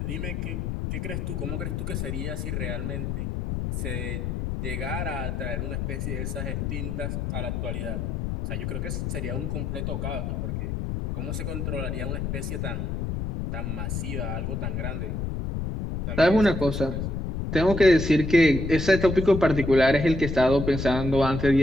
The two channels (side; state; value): left; noise; rumble, 3 dB below the sound